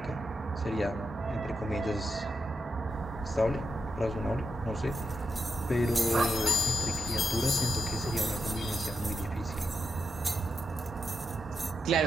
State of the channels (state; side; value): normal; both; correlation 0.85